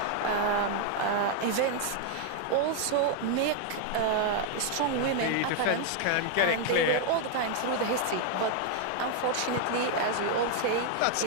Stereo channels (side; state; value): both; different; correlation 0.00